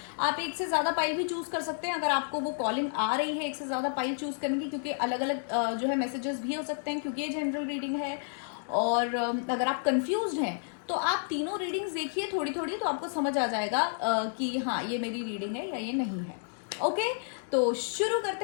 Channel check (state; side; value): silent; right; digital silence